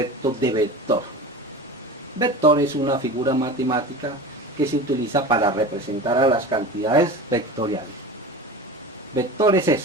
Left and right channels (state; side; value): normal; both; correlation 0.32